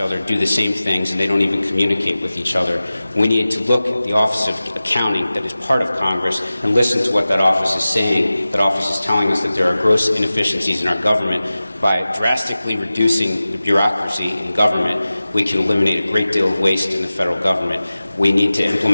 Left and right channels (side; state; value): both; inverted; correlation -0.96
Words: other, do the same things, and they don't even communicate with each other. We need to look at the Office of Accounting that is part of Congress and listen to what that office is saying. That office is telling us that there are gross inefficiencies in our government. By drastically reducing the bureaucracy in government, we can eliminate a great deal of waste in the federal government. We need to